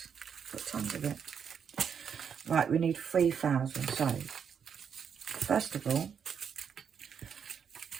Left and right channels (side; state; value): left; quieter; 7.3 dB